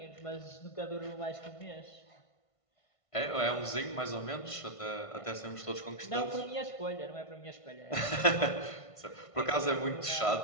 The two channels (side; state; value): right; late; 1.5 ms